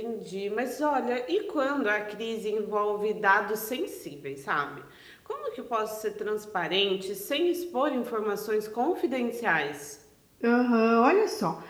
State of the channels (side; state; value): both; identical; correlation 1.00